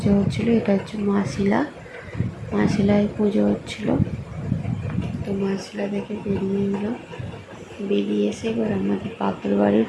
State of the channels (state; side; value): identical; both; correlation 1.00